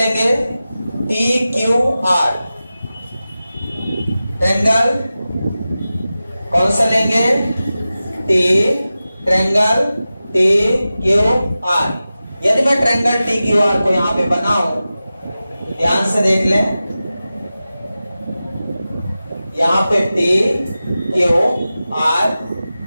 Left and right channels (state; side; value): inverted; both; correlation -0.95